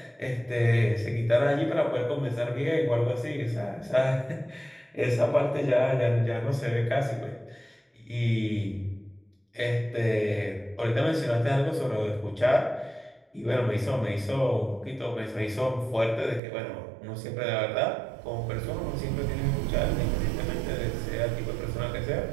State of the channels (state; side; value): drops out; left; at 16.4 s